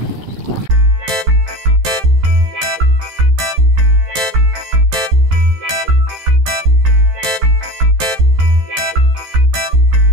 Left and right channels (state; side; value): late; left; 14 ms